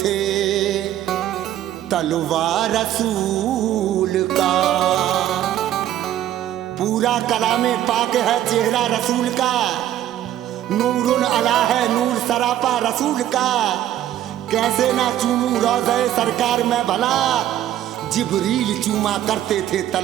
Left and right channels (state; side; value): quieter; left; 12.2 dB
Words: तलवार रसूल का। पूरा कलामे पाक है चेहरा रसूल का। नूरुन अला है नूर सरापा रसूल का। कैसे ना चूमूं रोज़े सरकार में भला, जिब्रील चूमा करते थे